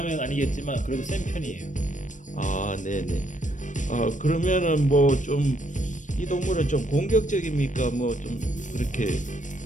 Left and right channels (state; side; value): late; right; 0.37 ms